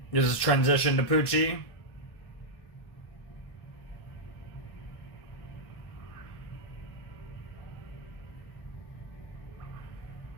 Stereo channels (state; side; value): late; right; 1.7 ms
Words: This is transition to Pucci.